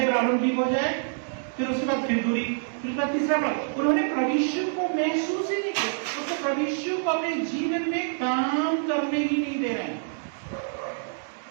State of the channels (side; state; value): left; silent; digital silence